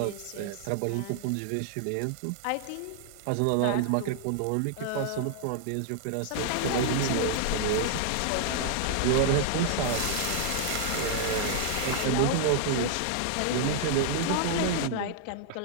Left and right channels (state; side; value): different; both; correlation -0.01